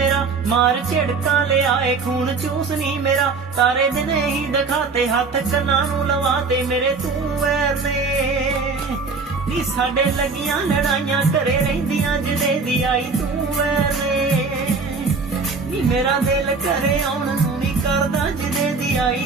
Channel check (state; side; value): quieter; left; 4.5 dB